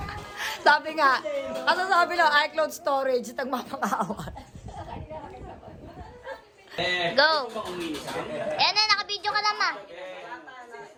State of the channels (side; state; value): both; identical; correlation 1.00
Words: Sabi nga, ano sabi lang, iCloud storage, nagmapang-awa. Go. Ayan na, nakabidyo ka lang, ma.